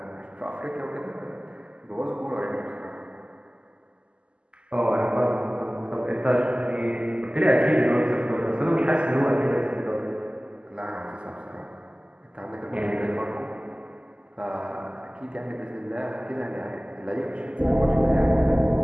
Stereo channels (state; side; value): late; left; 0.053 ms